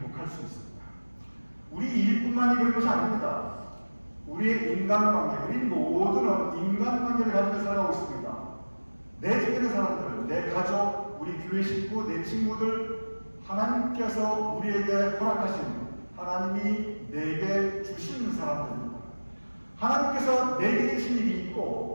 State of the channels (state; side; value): inverted; both; correlation -1.00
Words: 수 있습니다. 우리 일뿐만이 그런 것이 아닙니다. 우리의 인간관계, 우리 모두는 인간관계를 가지고 살아가고 있습니다. 내 주변의 사람들, 내 가족, 우리 교회 식구, 내 친구들, 하나님께서 우리에게 허락하신, 하나님이 내게 주시는 사람들입니다. 하나님께서 내게 주신 일이